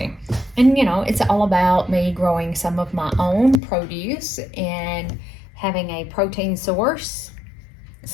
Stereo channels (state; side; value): drops out; right; at 3.6 s